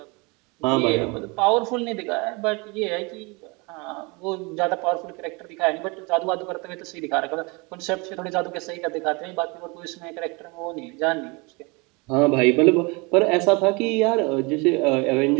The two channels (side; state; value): left; quieter; 28.3 dB